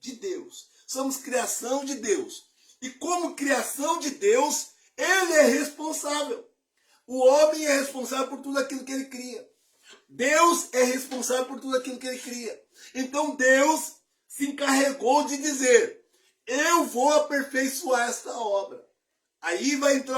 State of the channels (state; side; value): identical; both; correlation 1.00